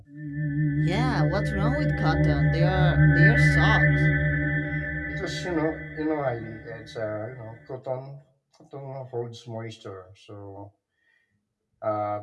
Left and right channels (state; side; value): identical; both; correlation 1.00